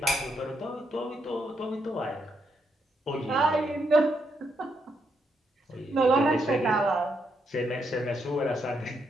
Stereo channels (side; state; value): both; normal; correlation 0.79